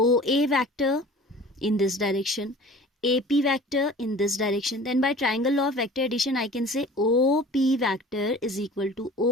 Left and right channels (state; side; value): normal; both; correlation 0.44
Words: A vector in this direction, AP vector in this direction, then by triangle law of vector addition I can say OP vector is equal to